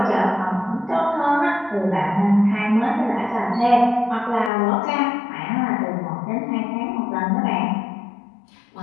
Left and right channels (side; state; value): right; drops out; at 4.5 s